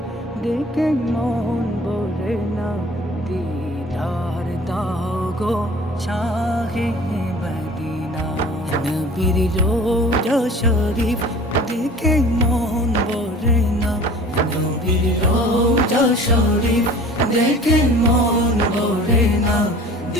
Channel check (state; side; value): normal; both; correlation 0.45